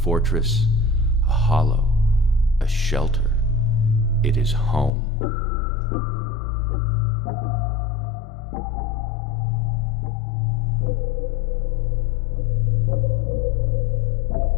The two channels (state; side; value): drops out; right; at 4.9 s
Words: a hollow, a shelter. It is home.